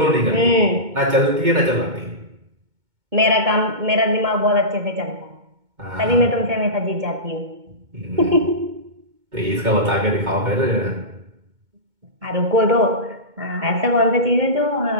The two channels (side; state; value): left; late; 2.2 ms